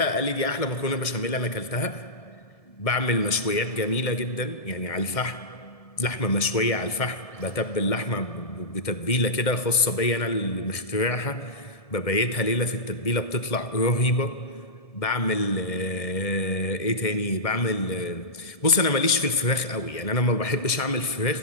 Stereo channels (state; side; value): late; right; 1.7 ms